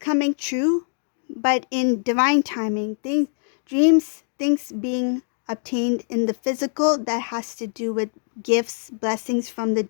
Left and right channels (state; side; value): silent; right; digital silence